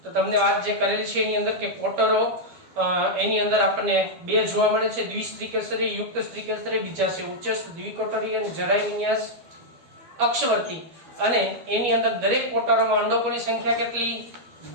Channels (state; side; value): late; left; 12 ms